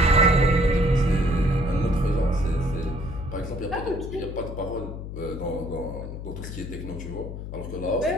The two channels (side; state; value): left; noise; hum, 8 dB below the sound